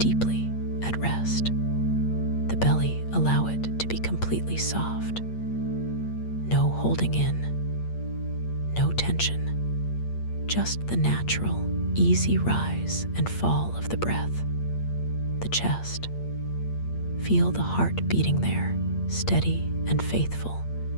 at rest. The belly, allow it to be completely soft. No holding in, no tension, just the natural, easy rise and fall of the breath. The chest. Feel the heart beating there, steady and faithful,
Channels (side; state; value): right; late; 8.6 ms